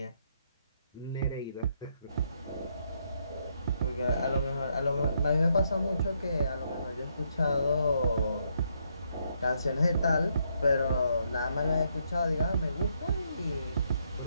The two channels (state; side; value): inverted; both; correlation -0.75